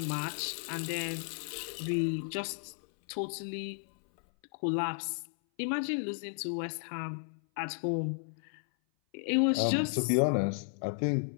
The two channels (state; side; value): silent; right; 55 dB below the other